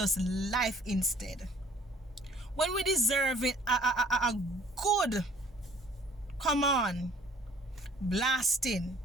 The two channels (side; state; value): both; normal; correlation 0.56